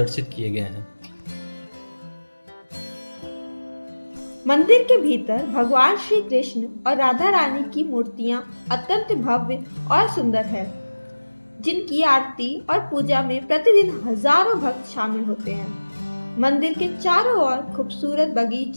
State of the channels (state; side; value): inverted; both; correlation -1.00